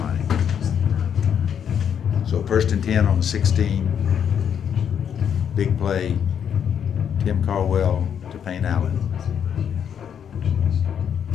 So 1st and 10 on the 16. Big play. Tim Caldwell to Payne Allen.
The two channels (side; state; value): right; quieter; 8.3 dB